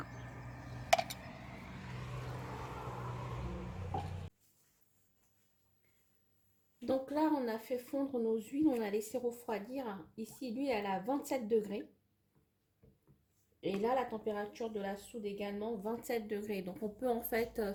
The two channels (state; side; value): identical; both; correlation 1.00